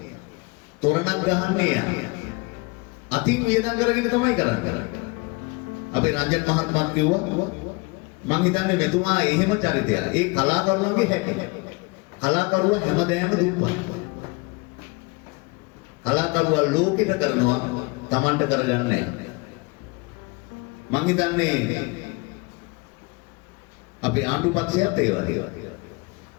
තොරණක් ගහන්නේ යා. අතින් වියදම් කරගෙන තමයි කරන්නේ. අපේ රංජන් මහත්මයා කිව්වා මං හිතන්නේ මෙතුමා එහෙම චරිතයක්. ඒ කලාකරුවන්ගේ හැටි. කලාකරුවා හැමදේම දුප්පත්. කලාකරුවා ලෝකෙට කරනවා Tamanට කරගන්නේ නැහැ. මං හිතන්නේ අපේ ආණ්ඩු පක්ෂයත් ඒ වගේ.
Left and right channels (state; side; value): quieter; right; 27.6 dB